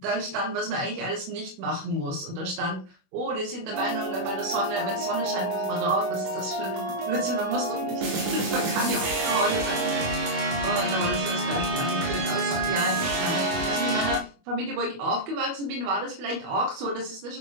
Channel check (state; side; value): late; left; 21 ms